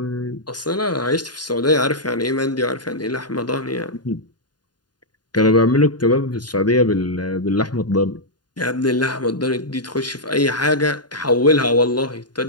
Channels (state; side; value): late; right; 0.70 ms